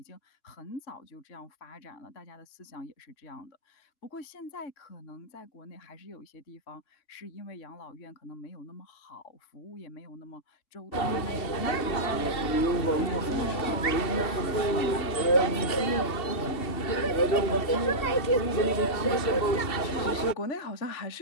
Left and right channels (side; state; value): right; late; 2.7 ms